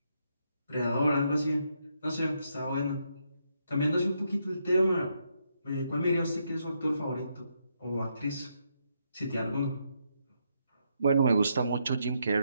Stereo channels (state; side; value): inverted; both; correlation -0.78